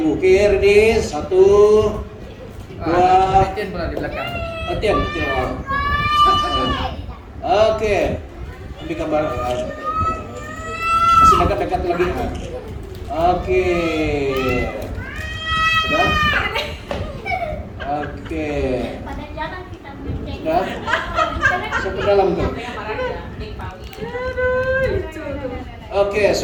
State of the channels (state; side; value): identical; both; correlation 1.00